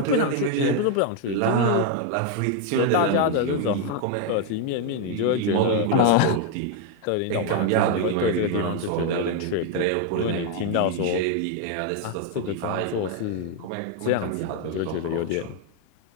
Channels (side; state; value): both; different; correlation 0.00